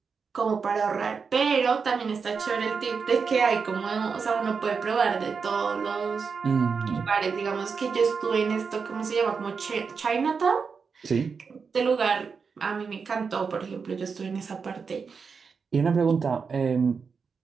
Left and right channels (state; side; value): quieter; left; 5.5 dB